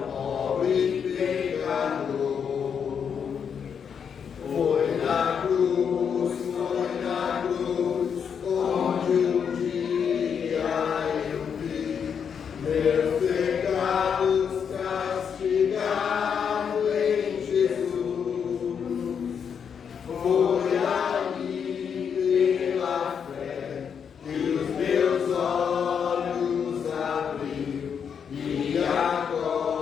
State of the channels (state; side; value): quieter; right; 7.2 dB